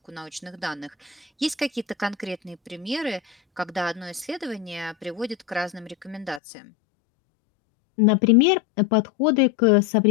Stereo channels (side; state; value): right; drops out; at 6.4 s